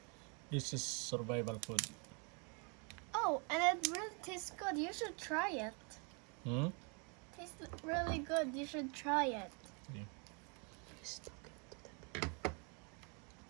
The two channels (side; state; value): left; quieter; 34.7 dB